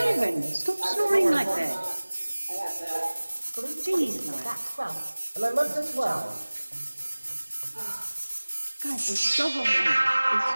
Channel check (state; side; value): inverted; both; correlation -1.00